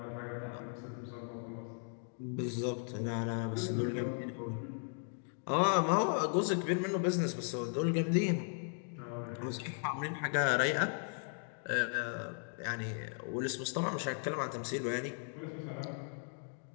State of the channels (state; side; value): silent; right; 53 dB below the other